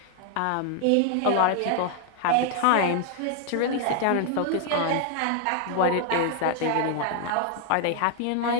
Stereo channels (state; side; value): different; both; correlation 0.00